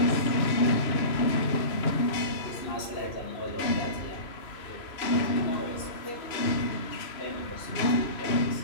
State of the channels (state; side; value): late; right; 3.0 ms